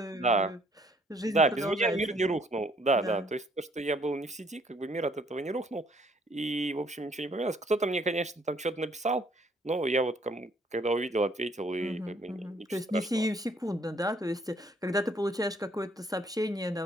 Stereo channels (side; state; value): both; normal; correlation 0.64